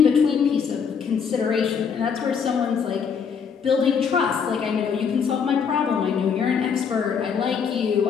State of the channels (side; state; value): right; quieter; 6.6 dB